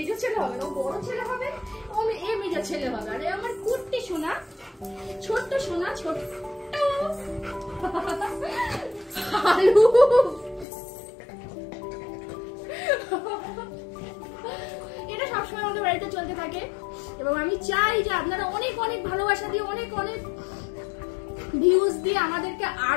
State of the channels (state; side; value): drops out; right; at 10.7 s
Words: ছেলে হবে না, ও বড় ছেলে হবে, ও এ মেজো ছেলে হবে। আর আমার কুট্টি সোনা, ছোট্ট সোনা, ছোট্ট হালু। এটা সবসময় আমাদের বাড়িতে চলতে থাকে এবং আমি চাই যে আপনারা অনেক অনেক ভালোবাসা দিয়ে, অনেক অনেক ভিউজ দিয়ে আমাদেরকে